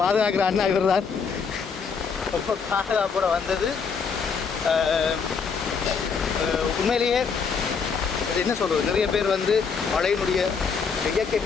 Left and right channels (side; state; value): right; quieter; 5.7 dB